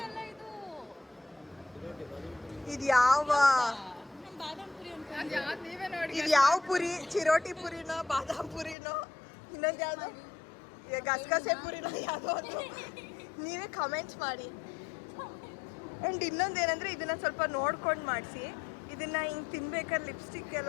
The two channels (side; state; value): right; drops out; at 8.8 s